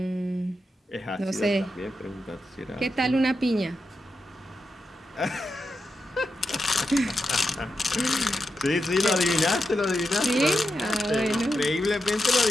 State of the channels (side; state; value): both; normal; correlation 0.88